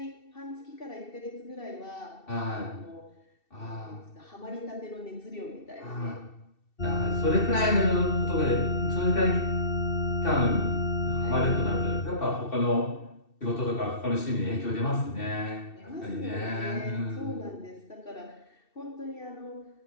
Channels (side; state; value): right; late; 2.7 ms